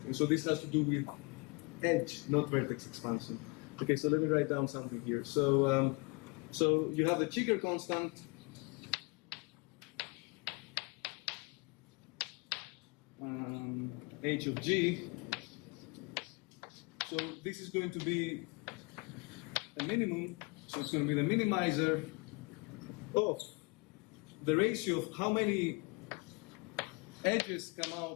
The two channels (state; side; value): quieter; right; 29.1 dB